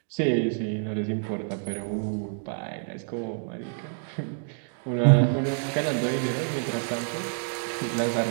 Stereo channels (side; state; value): left; silent; digital silence